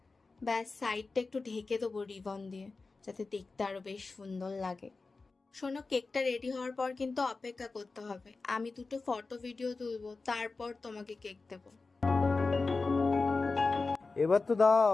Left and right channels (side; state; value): right; quieter; 3.9 dB